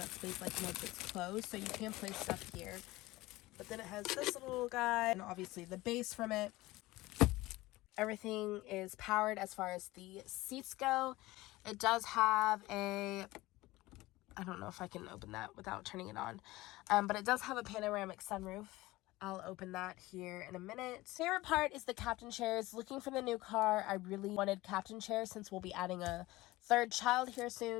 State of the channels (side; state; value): right; quieter; 19.1 dB